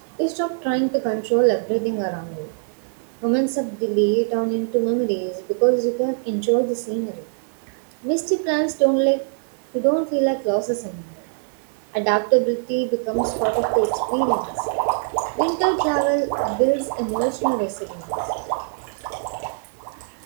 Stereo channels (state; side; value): silent; left; 60 dB below the other